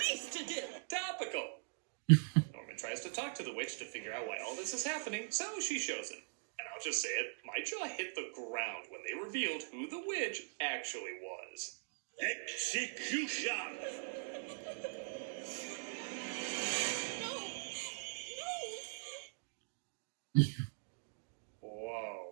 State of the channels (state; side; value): silent; left; digital silence